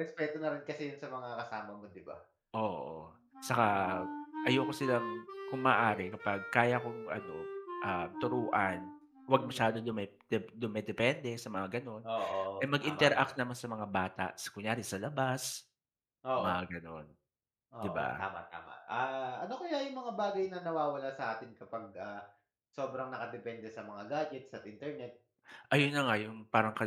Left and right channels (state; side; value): identical; both; correlation 1.00